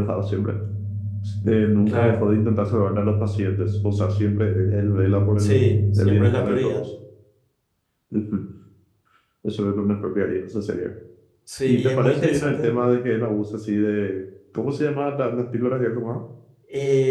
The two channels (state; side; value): identical; both; correlation 1.00